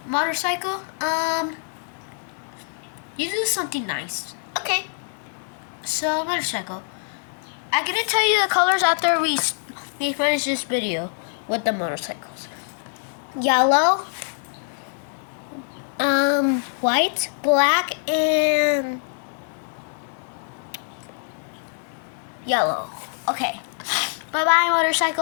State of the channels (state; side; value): silent; right; 62 dB below the other